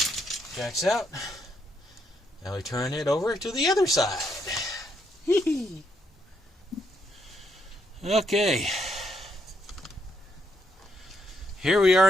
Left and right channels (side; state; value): both; normal; correlation 0.76